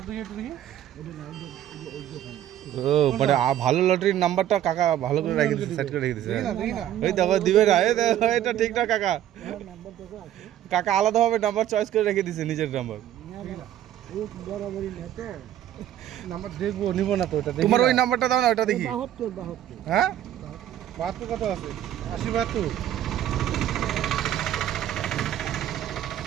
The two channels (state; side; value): quieter; left; 11.8 dB